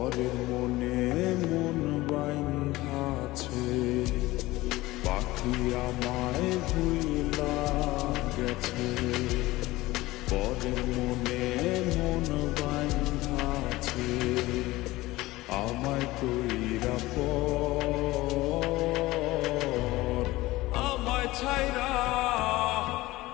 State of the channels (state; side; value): quieter; right; 18.8 dB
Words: মনে মন বাইন্ধাছে। পাখি আমায় ভুইলা গেছে, পরের মনে মন বাইন্ধাছে। আমায় কইরা পর আমায় ছাইরা